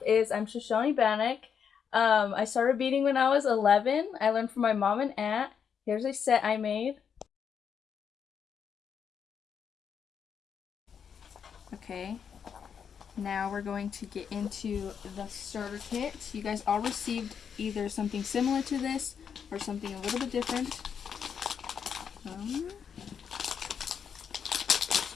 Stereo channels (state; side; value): quieter; right; 7.3 dB